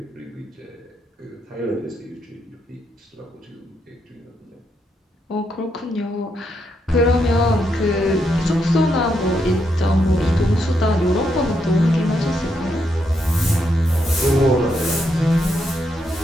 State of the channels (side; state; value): both; normal; correlation 0.79